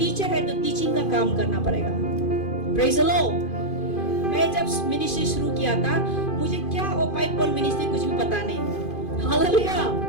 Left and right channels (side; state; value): right; late; 2.5 ms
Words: है तो टीचिंग का काम करना पड़ेगा। Praise the Lord. मैं जब मिनिस्ट्री शुरू किया था, मुझे क्या वो पाइपल मिनिस्ट्री कुछ भी पता नहीं। हालेलुया।